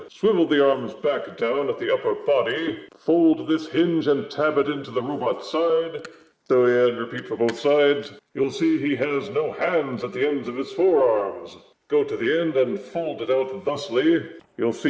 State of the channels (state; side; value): identical; both; correlation 1.00